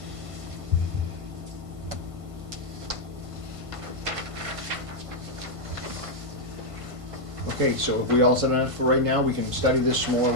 Okay, so if we all set on it for right now, we can study this some more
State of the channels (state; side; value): late; left; 1.5 ms